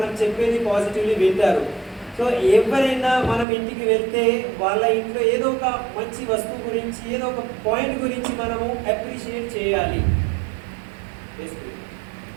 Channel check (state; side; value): drops out; left; at 3.5 s